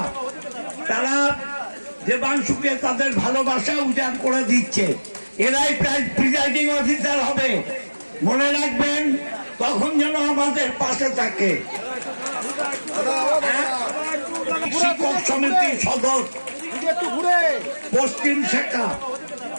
তারা দেবাংশুকে তাদের ভালোবাসা উজাড় করে দিচ্ছে। এরাই প্রিজাইডিং অফিসার হবে, মনে রাখবেন, তখন যেন আমাদের পাশে থাকে। শিক্ষক সমিতি সদর পশ্চিম শাখা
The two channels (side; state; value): both; inverted; correlation -1.00